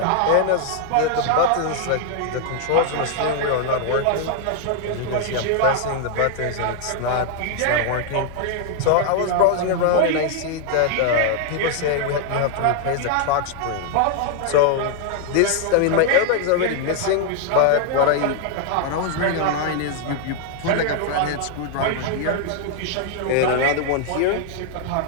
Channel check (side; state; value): both; different; correlation 0.00